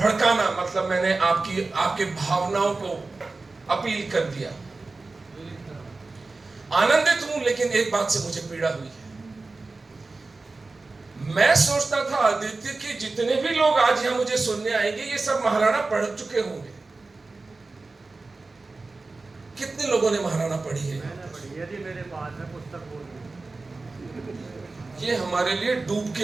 मतलब मैंने आपके भावनाओं को अपील कर दिया। आनंदित हूं, लेकिन एक बात से मुझे पीड़ा हुई है। मैं सोचता था आदित्य कि जितने भी लोग आज यहां मुझे सुनने आएंगे, ये सब महाराणा पढ़ चुके होंगे। कितने लोगों ने महाराणा पढ़ी है? यदि मेरे पास है पुस्तक बोल, ये हमारे लिए डूब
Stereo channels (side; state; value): left; quieter; 3.6 dB